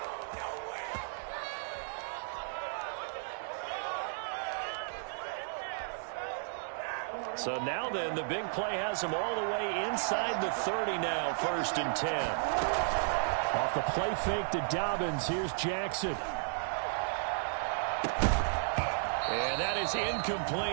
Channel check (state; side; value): silent; left; digital silence